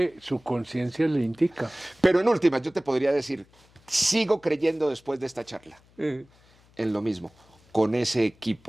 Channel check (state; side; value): noise; left; hum, 30 dB below the sound